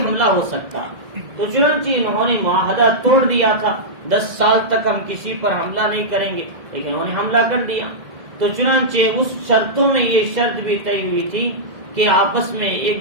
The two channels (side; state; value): left; late; 1.8 ms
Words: ہو سکتا. تو چنانچہ انہوں نے معاہدہ توڑ دیا تھا، 10 سال تک ہم کسی پر حملہ نہیں کریں گے، لیکن انہوں نے حملہ کر دیا. تو چنانچہ اس شرطوں میں یہ شرط بھی طے ہوئی تھی کہ آپس میں